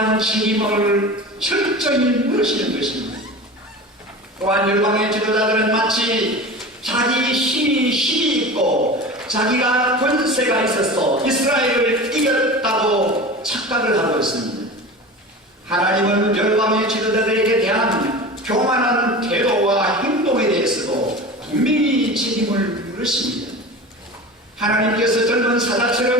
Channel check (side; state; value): both; normal; correlation 0.33